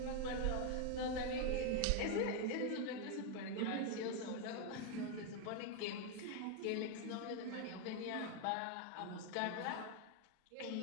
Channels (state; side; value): different; both; correlation 0.01